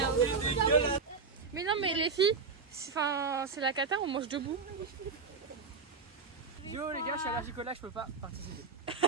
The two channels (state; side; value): quieter; left; 5.0 dB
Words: Mais non, mais les filles, c'est la cata, on mange debout. Yo les gars, je suis allergique au lac, je peux pas participer.